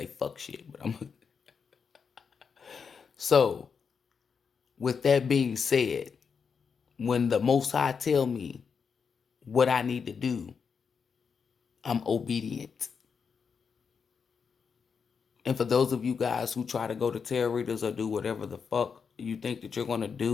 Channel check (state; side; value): quieter; right; 6.1 dB